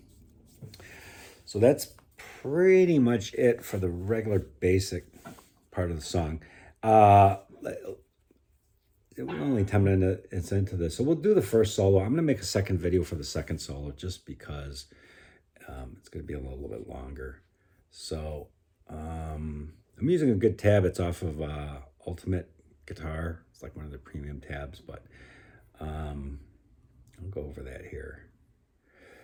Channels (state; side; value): identical; both; correlation 1.00